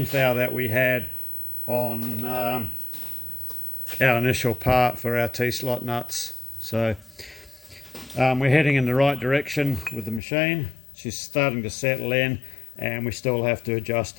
thou that we had on our initial part for our T-slot nuts. So we're heading in the right direction with the machine. She's starting to settle in, and we still have to adjust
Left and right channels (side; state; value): right; drops out; at 10.2 s